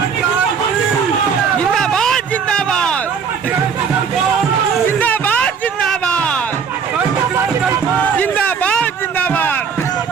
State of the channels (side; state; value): left; quieter; 6.4 dB